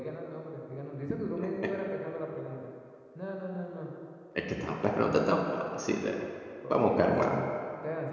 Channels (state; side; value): identical; both; correlation 1.00